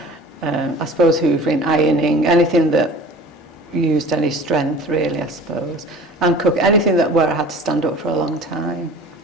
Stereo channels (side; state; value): both; normal; correlation 0.42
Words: I suppose hoovering, ironing, anything that used any strength, really, I suppose. And cook, anything where I had to stand up for a long time.